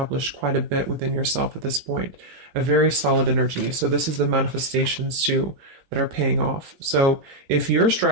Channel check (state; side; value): late; left; 20 ms